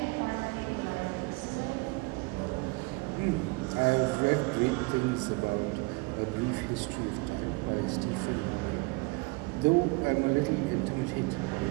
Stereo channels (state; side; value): quieter; left; 26.1 dB